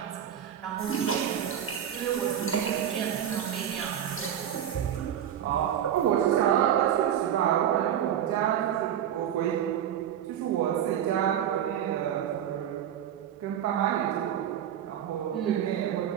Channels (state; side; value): quieter; left; 9.9 dB